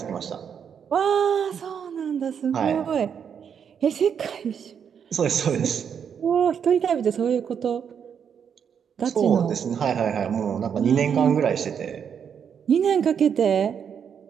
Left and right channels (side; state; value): left; quieter; 7.6 dB